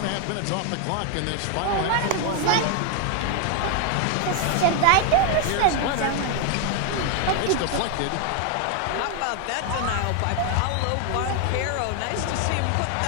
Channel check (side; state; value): both; different; correlation 0.00